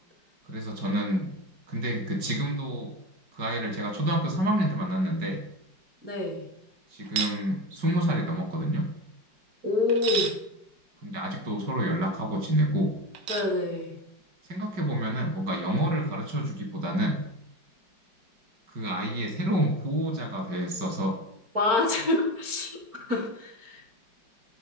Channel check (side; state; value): left; late; 5.2 ms